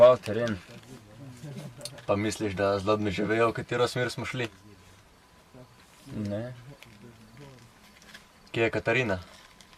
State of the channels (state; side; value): identical; both; correlation 1.00